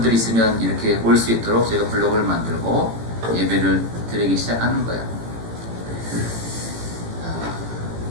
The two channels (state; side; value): late; left; 18 ms